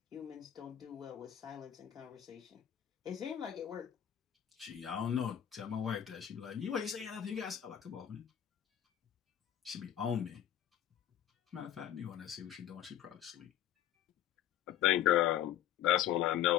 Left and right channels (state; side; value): quieter; right; 11.1 dB